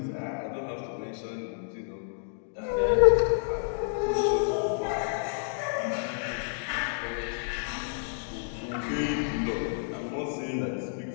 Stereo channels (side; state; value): right; silent; digital silence